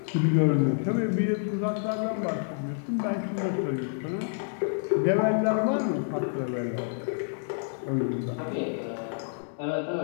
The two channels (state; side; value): silent; right; 59 dB below the other